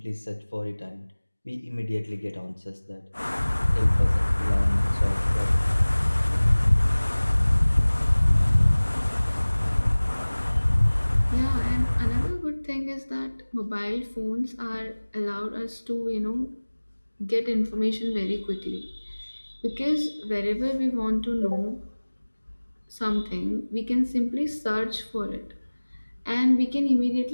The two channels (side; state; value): both; inverted; correlation -1.00